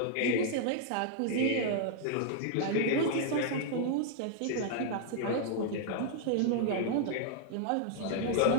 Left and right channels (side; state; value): both; different; correlation -0.01